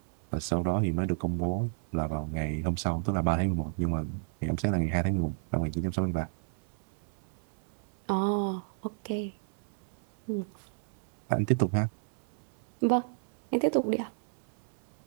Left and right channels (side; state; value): left; silent; 57 dB below the other